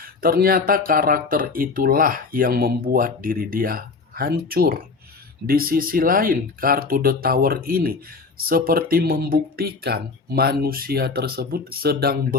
Ternyata karakter itulah yang membuat diri dia hancur. Di sisi lain, kartu The Tower ini seperti membuktikan manusia tersebut sedang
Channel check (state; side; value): quieter; right; 4.4 dB